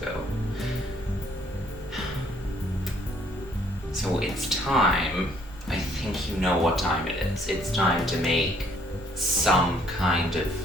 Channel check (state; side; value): normal; both; correlation 0.64